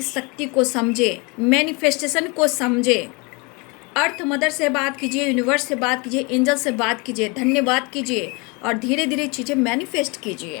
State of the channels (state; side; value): quieter; right; 28.8 dB